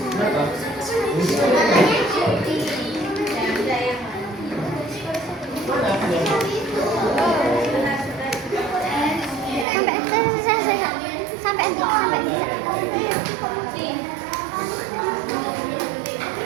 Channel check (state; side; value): drops out; left; at 9.7 s